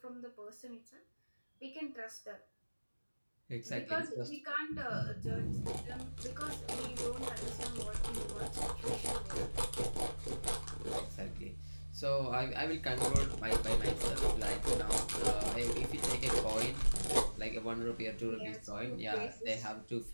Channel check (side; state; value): both; inverted; correlation -1.00